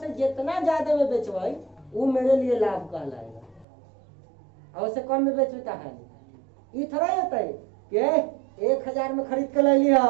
जितना ज्यादा में बेचवाई वो मेरे लिए लाभ कहलाएगा, और उससे कम में बेचू तो हानि। ये थोड़ा होता है कि 1000 में खरीद के ले लिया,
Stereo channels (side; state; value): left; drops out; at 3.7 s